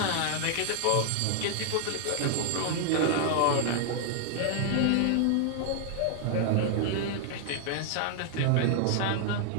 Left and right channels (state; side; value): different; both; correlation 0.00